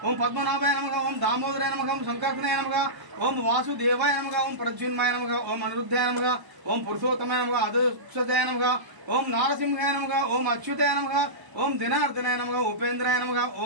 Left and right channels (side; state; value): left; late; 1.0 ms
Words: ओम पद्मनाभाय नमः ओम दामोदराय नमः ओम शंकरनाय नमः ओम वासुदेवाय नमः ओम प्रद्युम्नाय नमः ओम अनिरुद्धाय नमः ओम पुरुषोत्तमाय नमः अदुक्षताय नमः ओम नारसिंहाय नमः ओम अच्युताय नमः ओम दिनार्दनाय नमः उपेन्द्राय नमः